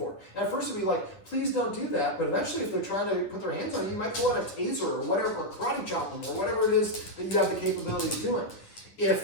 And at first it'll be like, please don't do that, but eventually if they're trying to put their hands on you, you might pull out a taser or whatever, or karate chop them, or whatever it is that you have the capability of doing.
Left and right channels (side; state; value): right; late; 9.8 ms